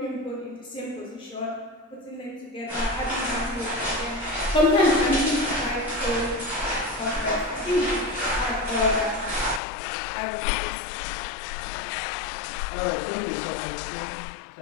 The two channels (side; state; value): right; drops out; at 9.6 s